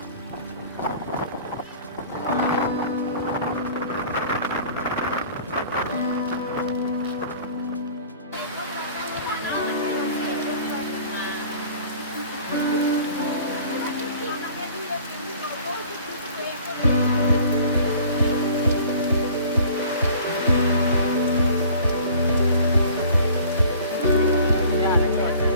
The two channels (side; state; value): both; inverted; correlation -0.47